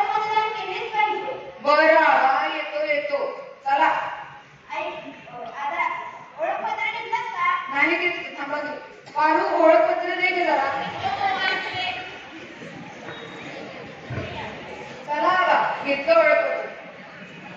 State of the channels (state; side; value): identical; both; correlation 1.00